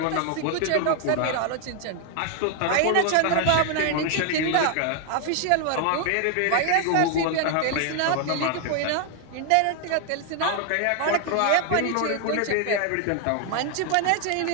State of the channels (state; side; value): different; both; correlation 0.00